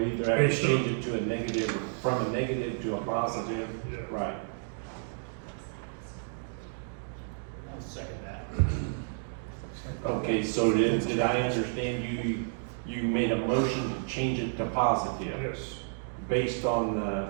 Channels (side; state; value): left; silent; digital silence